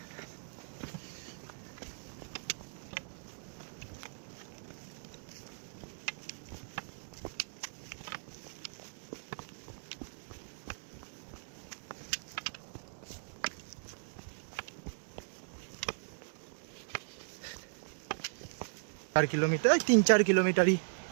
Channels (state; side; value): silent; left; digital silence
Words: চার কিলোমিটার, 3-4 কিলোমিটারই